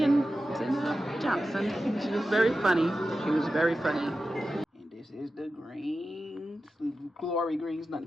Zainab Johnson. She was very funny. She was very funny. And this is the greens, glory greens, nothing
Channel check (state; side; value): normal; both; correlation 0.93